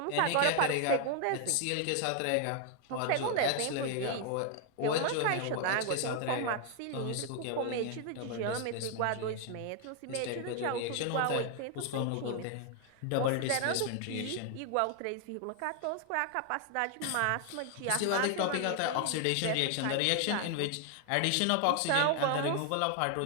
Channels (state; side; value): different; both; correlation 0.00